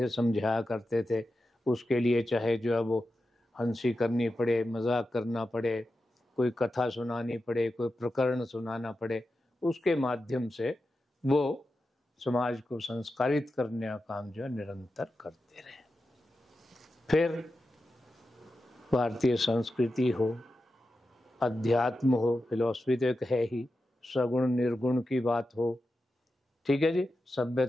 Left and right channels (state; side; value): normal; both; correlation 0.91